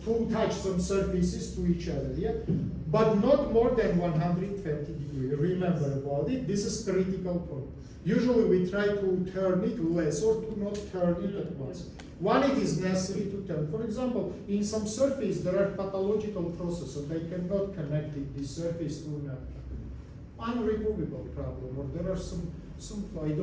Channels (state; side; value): identical; both; correlation 1.00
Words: to touch some surfaces to each other, yeah? But not more than 120 degrees. Remember about it, this is critical point. Usually we try to turn it less or to not turn it at once. When it is necessary to turn. For example, in some surface there are pathological processes, they cannot connect this surface to an unremovable problem, or there are some I